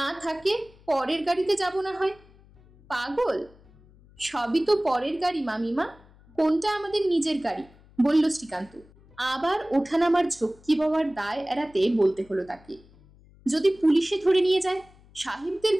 থাকে পরের গাড়িতে যাব না হয়। পাগল, সবই তো পরের গাড়ি মামিমা, কোনটা আমাদের নিজের গাড়ি? বলল শ্রীকান্ত। আবার ওঠানামার ঝক্কি বাবার দায় এড়াতে বলতে হলো তাকে, যদি পুলিশে ধরে নিয়ে যায়? সাহেবদের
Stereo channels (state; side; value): noise; left; hum, 26 dB below the sound